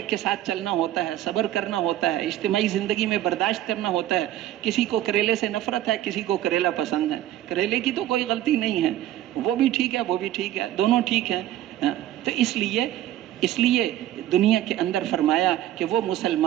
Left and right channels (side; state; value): left; quieter; 12.9 dB